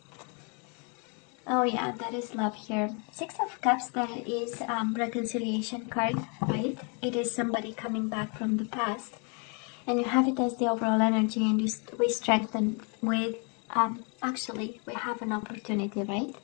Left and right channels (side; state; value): right; quieter; 35.8 dB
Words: Oh yeah, that is love here. Six of Cups, that is reconciliation card, right? It is somebody coming back from the past. And you have it as the overall energy, and we strengthen with, actually, we have an opportunity, right?